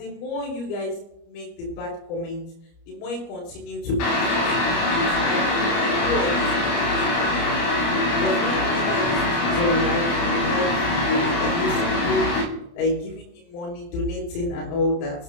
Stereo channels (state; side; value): late; right; 29 ms